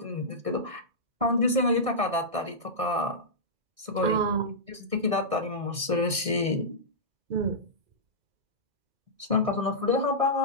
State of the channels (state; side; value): late; left; 1.6 ms